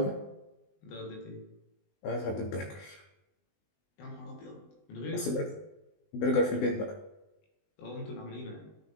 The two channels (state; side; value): late; right; 20 ms